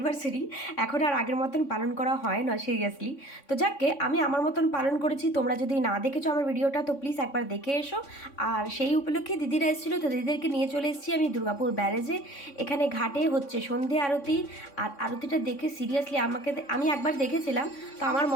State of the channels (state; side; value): late; right; 3.6 ms